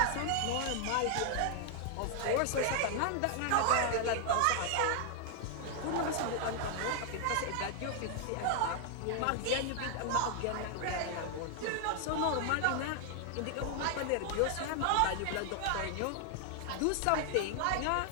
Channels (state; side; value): different; both; correlation 0.00